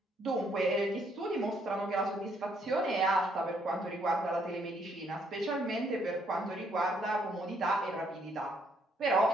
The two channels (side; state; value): both; normal; correlation 0.70